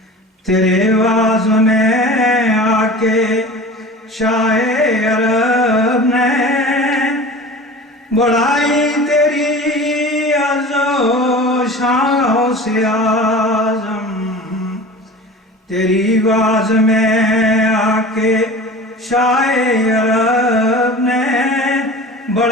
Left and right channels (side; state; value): both; normal; correlation 0.37